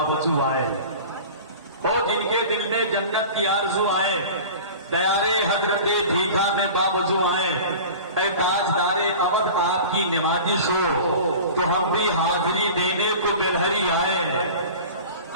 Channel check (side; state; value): both; inverted; correlation -0.38